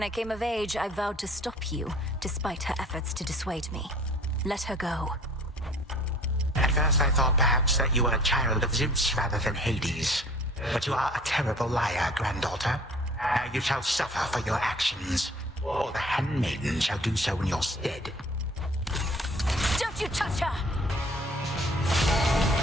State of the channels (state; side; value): normal; both; correlation 0.51